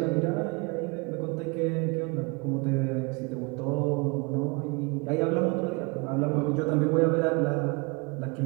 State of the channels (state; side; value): quieter; left; 29.6 dB